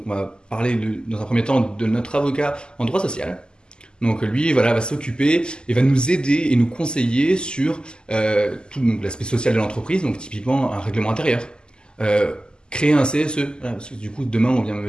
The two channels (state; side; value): late; right; 0.047 ms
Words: on va parler dans un premier temps de notre avocat en droit social. Donc lui voilà, va s'occuper et va nous aider et nous conseiller sur tout donc, l'aspect social de l'entreprise, donc typiquement un règlement intérieur. Euh, Créer un CSE. Voilà, parce que du coup, demain, on vient